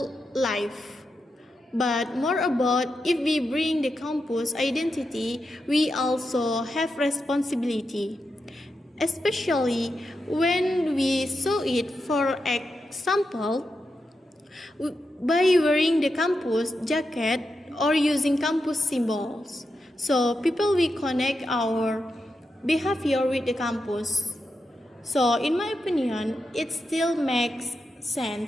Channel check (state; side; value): normal; both; correlation 0.87